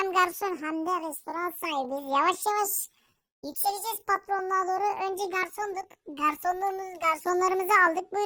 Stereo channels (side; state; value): both; identical; correlation 1.00